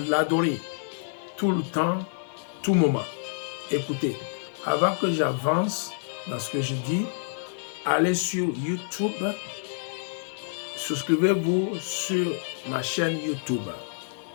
tout le temps, tout moment. Écoutez, avant que j'avance dans ce que je dis, allez sur YouTube, souscrivez-vous sur ma chaîne YouTube.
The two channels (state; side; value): silent; right; digital silence